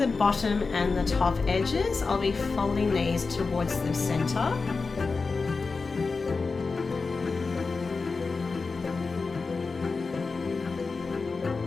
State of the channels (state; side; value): quieter; right; 4.3 dB